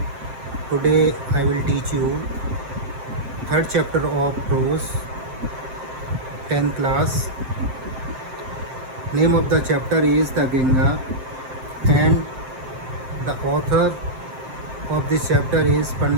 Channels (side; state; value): left; late; 7.7 ms